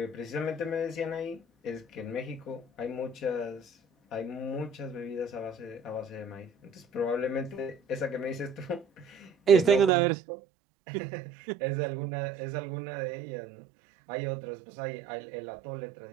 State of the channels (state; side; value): drops out; left; at 9.9 s